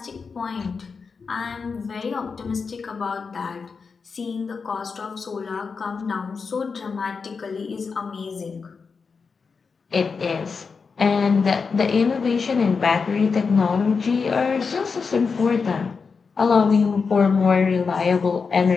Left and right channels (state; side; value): quieter; right; 5.2 dB